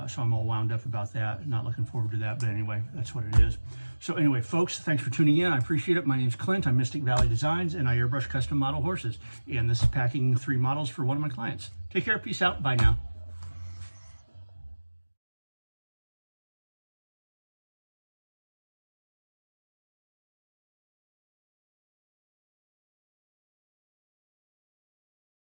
So I'm all wound up about that. Not looking forward to that, but anyway, that's what it is. So anyway, folks, thanks for tuning in. I appreciate it. My name's Clint. I'm Mystic Valley Designs, and I airbrush custom model horses. And this is packing 3 models for one of my clients. Take care. Peace out. Bye now.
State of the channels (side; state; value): both; inverted; correlation -1.00